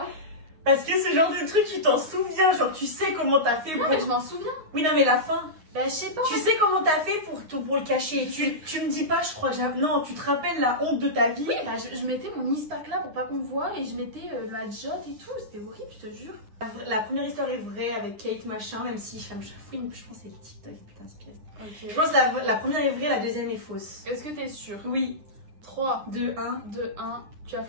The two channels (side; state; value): left; late; 9.7 ms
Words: Parce que ce genre de truc, tu t'en souviens, genre tu sais comment t'as fait pour... Non, mais je m'en souviens. Oui, non, mais la fin. Bah, je sais pas. Tu sais comment t'as fait pour le cacher. Tu me dis pas, je crois que non, tu te rappelles la honte de ta vie. Oui, bah je mettais mon ispac là pour pas qu'on voit et je mettais la jotte et tout. C'était horrible, je te jure. La première histoire est vraie avec Kate machin, même si je pense que c'est le TikTok qui t'inspire. Ok. Je pense que la première est vraie, la deuxième est fausse. Est-ce que t'es sûre? Oui. 3, 2, 1. 2, 1, tu as